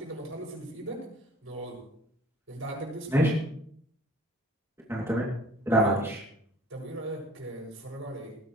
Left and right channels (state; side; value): normal; both; correlation 0.50